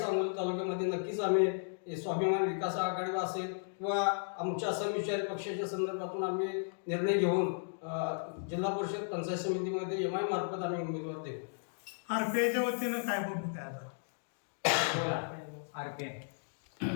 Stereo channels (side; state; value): right; silent; digital silence